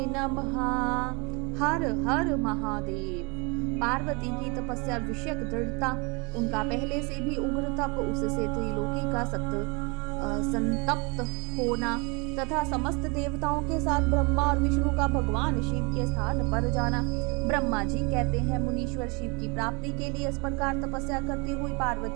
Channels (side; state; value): left; quieter; 29.8 dB